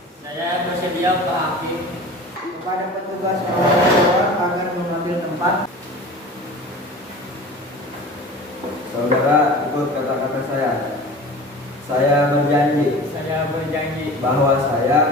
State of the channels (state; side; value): normal; both; correlation 0.38